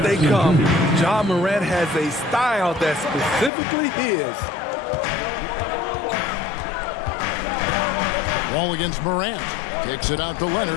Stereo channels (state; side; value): drops out; right; at 3.5 s